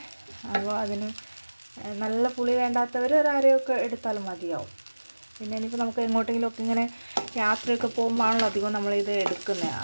അപ്പോൾ അതിന് നല്ല പുളി വേണ്ടാത്തവർ ഒരു അരയൊക്കെ എടുത്താലും മതിയാവും. പിന്നെ ഇനിയിപ്പോൾ നമുക്ക് എങ്ങോട്ടെങ്കിലുമൊക്കെ ഇങ്ങനെ യാത്രയൊക്കെ പോകുമ്പോഴാണല്ലോ അധികം നമ്മളിത് എടുക്കുന്നത്.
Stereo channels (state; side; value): inverted; both; correlation -1.00